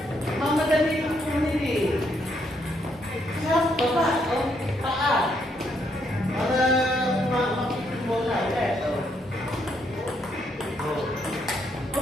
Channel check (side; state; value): both; normal; correlation 0.74